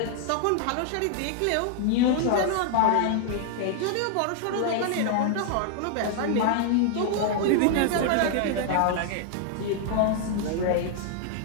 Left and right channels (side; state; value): both; different; correlation 0.00